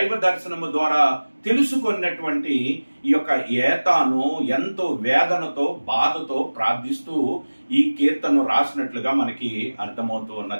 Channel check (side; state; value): both; inverted; correlation -1.00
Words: దర్శనము ద్వారా తెలుసుకున్నటువంటి ఈ యొక్క ఏతాను ఎంతో వేదనతో బాధతో ప్రార్థిస్తూ ఈ కీర్తనను రాసినట్లుగా మనకి అర్థమవుతూ